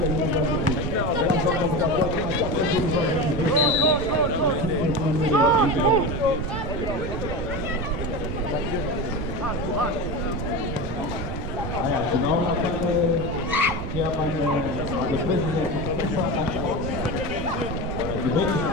Haya, tunaona pale chairman the president kutoka debate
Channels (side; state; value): right; noise; rumble, 6 dB below the sound